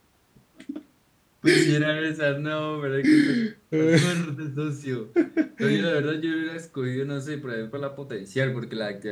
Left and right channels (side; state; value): both; identical; correlation 1.00